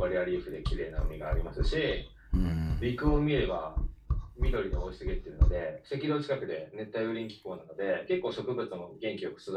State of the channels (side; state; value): both; identical; correlation 1.00